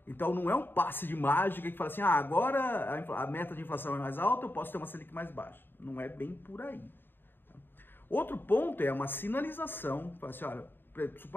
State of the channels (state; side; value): late; right; 0.097 ms